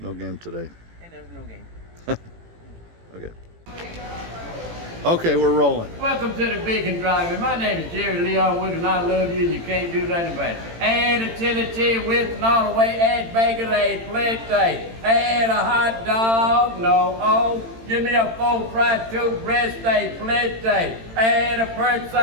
game today. And there's no game. Okay. Okay, we're rolling. Welcome to the Beacon Drive. My name is Jerry Leon Wood, and I love you, and you can't do nothing about it. Add a chili cheese with and all the way, add bacon, add plenty, add a hot dog, no, oh, give me a full fried two breast steak, plenty, add a perch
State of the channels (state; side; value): late; left; 18 ms